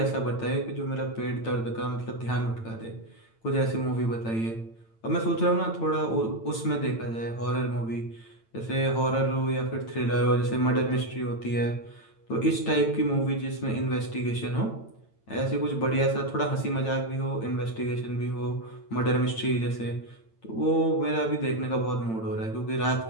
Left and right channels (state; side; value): late; right; 8.9 ms